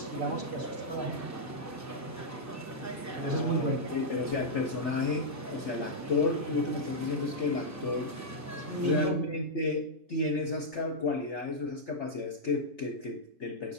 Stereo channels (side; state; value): both; normal; correlation -0.07